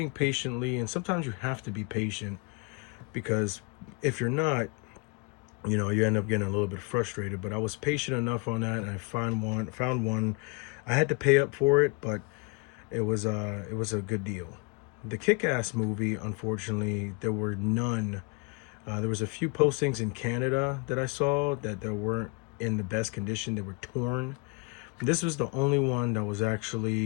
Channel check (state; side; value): quieter; right; 32.1 dB